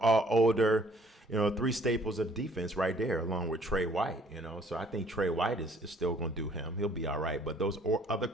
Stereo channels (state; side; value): normal; both; correlation 0.60